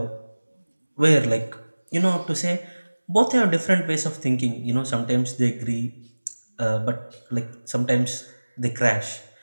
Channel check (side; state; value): both; inverted; correlation -1.00